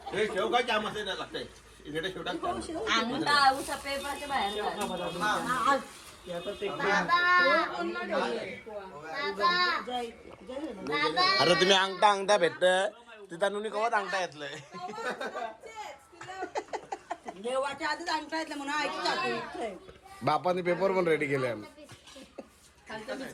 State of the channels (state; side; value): identical; both; correlation 1.00